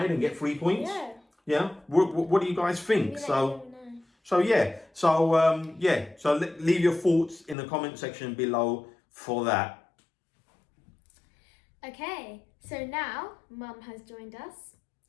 and get 3 points? Yeah. What do you guys think? So leave your thoughts in the comment section below for that. Okay, so now Mum has joined us,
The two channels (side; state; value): right; drops out; at 7.6 s